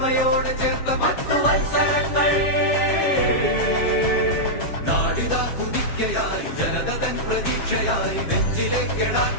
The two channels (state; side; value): late; right; 7.3 ms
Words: ചേർത്ത 10 വത്സരങ്ങൾ നാടിതാ കുതിക്കയായി ജനത തൻ പ്രതീക്ഷയായി നെഞ്ചിലെ